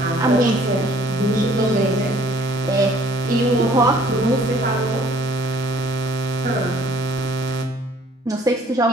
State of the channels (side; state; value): both; normal; correlation 0.58